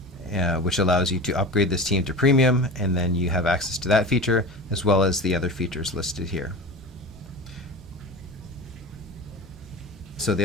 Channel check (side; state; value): both; normal; correlation 0.31